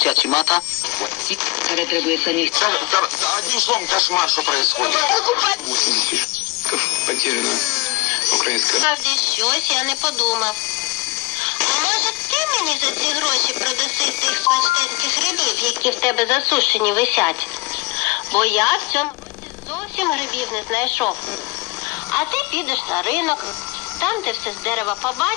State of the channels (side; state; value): right; quieter; 23.8 dB